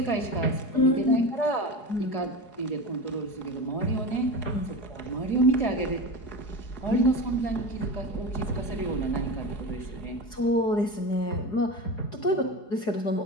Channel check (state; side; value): late; right; 4.8 ms